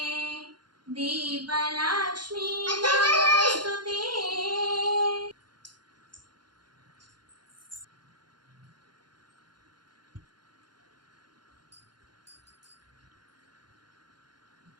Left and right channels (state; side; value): late; left; 0.71 ms